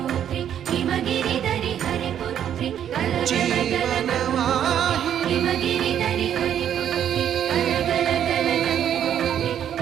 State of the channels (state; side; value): quieter; left; 9.7 dB